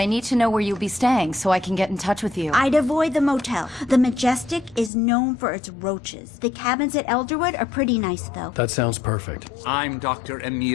need to know where you'll be staying so I can get in touch with you. I'd avoid the motel. The Majestic is known for its roaches. The cabins at Elderwood are pretty nice, though. That sounds perfect. I'm Dr.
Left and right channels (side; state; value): right; drops out; at 4.9 s